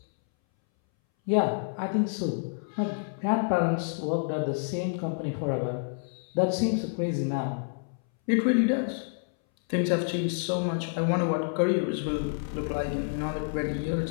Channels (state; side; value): silent; right; 59 dB below the other